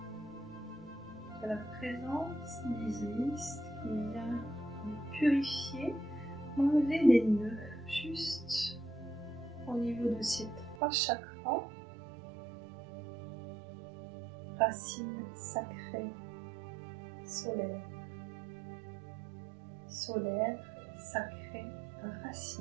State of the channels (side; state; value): left; drops out; at 10.8 s